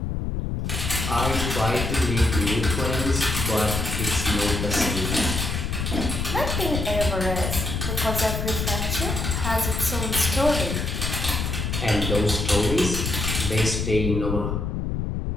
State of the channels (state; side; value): noise; left; rumble, 2 dB below the sound